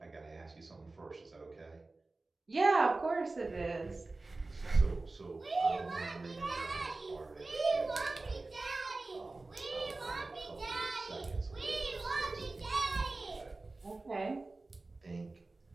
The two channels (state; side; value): quieter; left; 3.3 dB